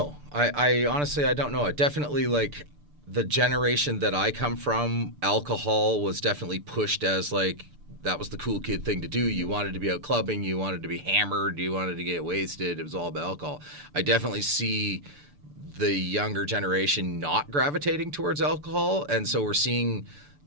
I honestly, I don't know. I definitely, like, the generation that I come from, alcohol was definitely pushed as, like, that was the cool kid thing to do. You wanted to be out clubbing, you wanted to be hammered, you wanted to get wasted. It was all about alcohol. I definitely see the younger generation not gravitating towards alcohol, and so we're seeing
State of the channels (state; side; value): late; left; 6.8 ms